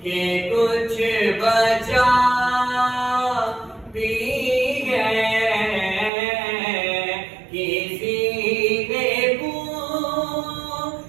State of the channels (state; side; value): drops out; left; at 6.1 s